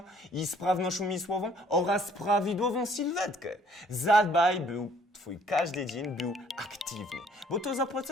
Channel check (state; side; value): normal; both; correlation 0.60